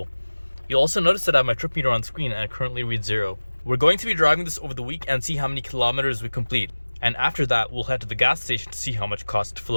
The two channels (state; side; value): inverted; both; correlation -1.00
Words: You'll also notice that I have my trip meter on screen and it currently reads 0. We're going to be driving this over the week and see how many kilometers we complete. And after that, we'll head to the gas station to see how much it costs to fill